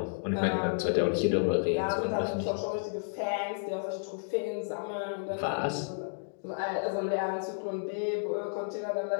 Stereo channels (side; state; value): right; silent; digital silence